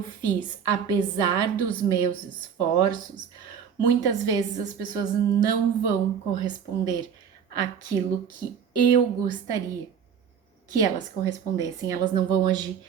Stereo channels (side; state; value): left; quieter; 7.5 dB